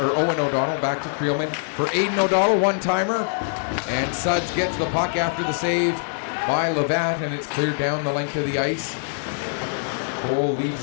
O'Donnell, back to Creelman. For Aiden O'Donnell, one-timer. And Suds gets the puck after the save by Levatt, and it's cleared down the length of the ice. Cole leaves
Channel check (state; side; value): silent; right; 62 dB below the other